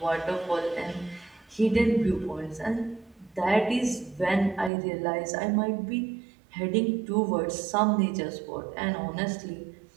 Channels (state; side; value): drops out; left; at 4.7 s